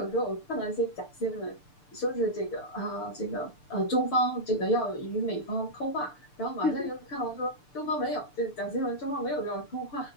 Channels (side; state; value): right; late; 6.8 ms